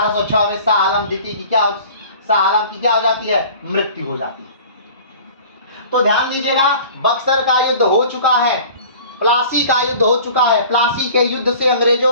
में शाह आलम द्वितीय की क्या हो जाती है? मृत्यु हो जाती है। तो ध्यान दीजिएगा, बक्सर का युद्ध हो चुका है, प्लासी का युद्ध हो चुका है। प्लासी के युद्ध से अंग्रेजों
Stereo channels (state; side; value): inverted; both; correlation -0.45